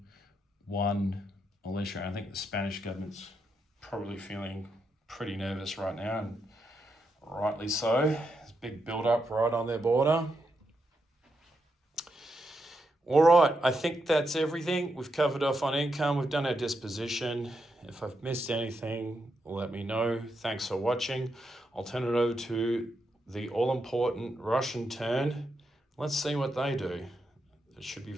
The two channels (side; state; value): both; normal; correlation 0.83